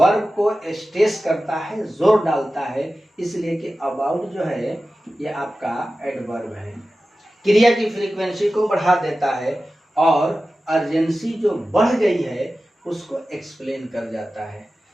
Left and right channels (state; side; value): normal; both; correlation 0.95